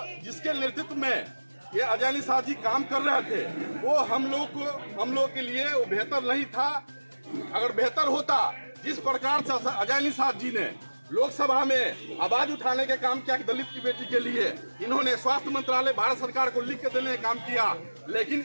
जिसके नेतृत्व में ये अजय निषाद जी काम कर रहे थे वो हम लोग के लिए वो बेहतर नहीं था। अगर बेहतर होता, जिस प्रकार से अजय निषाद जी ने लोकसभा में आवाज उठाने का काम किया कि दलित की बेटी के लिए, इन्होंने स्वास्थ्य मंत्रालय भारत सरकार को लिख के देने का काम किया, लेकिन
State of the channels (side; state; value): both; inverted; correlation -1.00